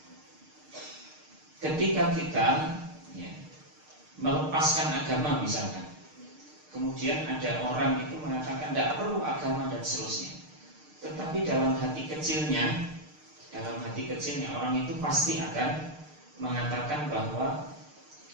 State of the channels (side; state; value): left; late; 6.6 ms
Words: ketika kita, ya, melepaskan agama misalkan, kemudian ada orang itu mengatakan tidak perlu agama dan seterusnya, tetapi dalam hati kecilnya orang itu pasti akan mengatakan bahwa